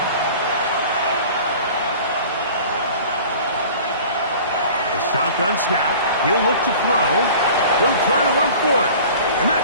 Shotgun snap. He'll look to throw. He'll try to run for it. And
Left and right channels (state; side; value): inverted; both; correlation -0.43